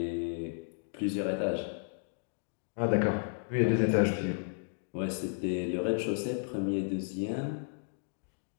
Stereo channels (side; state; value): right; silent; digital silence